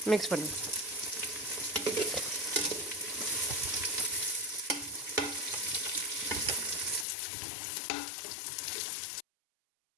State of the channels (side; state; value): right; drops out; at 7.1 s